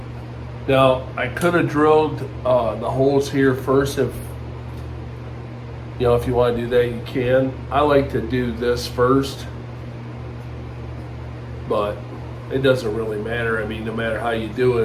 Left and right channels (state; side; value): identical; both; correlation 1.00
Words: Now, I could have drilled the holes here first. If you want to do that, you can. I like to do this first, but it doesn't really matter. I mean, no matter how you do